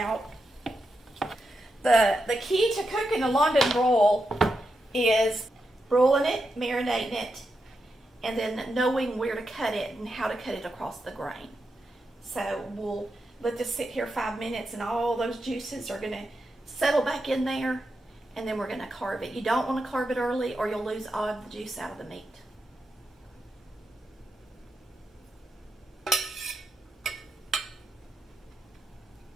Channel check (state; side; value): normal; both; correlation 0.86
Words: The key to cooking a London broil is broiling it, marinating it, and then knowing where to cut it and how to cut it across the grain. So we'll let this sit here 5 minutes, and all those juices are going to settle back in there, and then we're going to carve it. You don't want to carve it early or you'll lose all of the juice out of the meat.